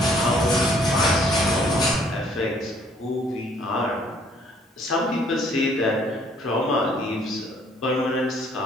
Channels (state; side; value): normal; both; correlation 0.62